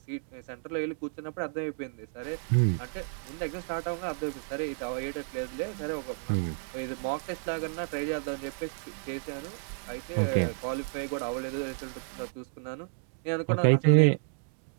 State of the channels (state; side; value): silent; left; 57 dB below the other